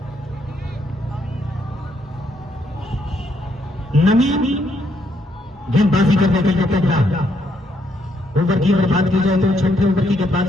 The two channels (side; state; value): both; normal; correlation 0.74